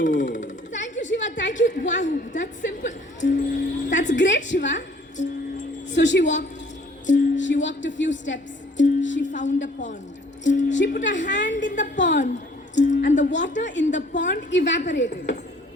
Thank you, Shiva. Thank you. Wow, that's simple. That's great, Shiva. So she walked. She walked a few steps. She found a pond. She put her hand in the pond, and the water in the pond evaporated.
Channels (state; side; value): normal; both; correlation 0.57